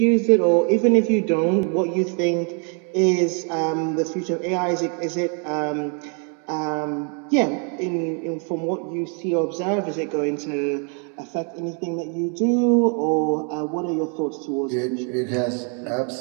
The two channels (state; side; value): quieter; left; 39.9 dB